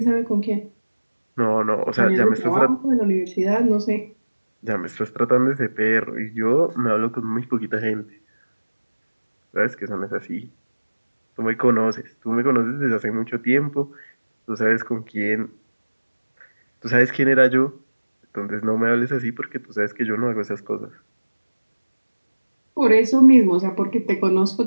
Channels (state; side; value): inverted; both; correlation -1.00